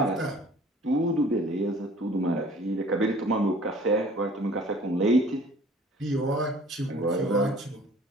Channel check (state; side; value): normal; both; correlation 0.51